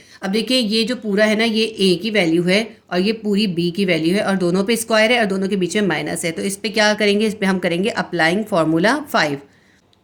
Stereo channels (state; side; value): identical; both; correlation 1.00